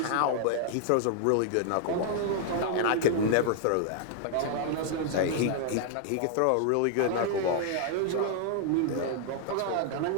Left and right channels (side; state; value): both; different; correlation -0.01